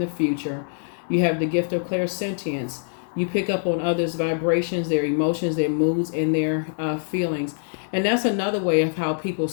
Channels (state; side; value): silent; right; 63 dB below the other